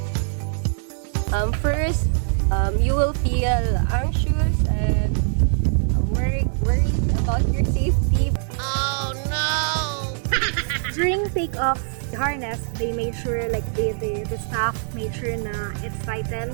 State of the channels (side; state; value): left; silent; digital silence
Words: First, you will feel anxious and worried about your safety. During takeoff, the harness, they made sure, like the staff made sure na it's